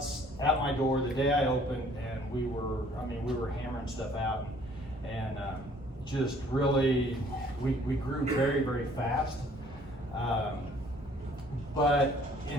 at my door the day I opened, and we were hammering stuff out, and just really, we grew very, very fast. But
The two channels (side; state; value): both; normal; correlation 0.58